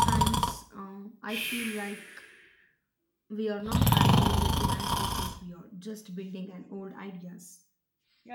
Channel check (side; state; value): both; identical; correlation 1.00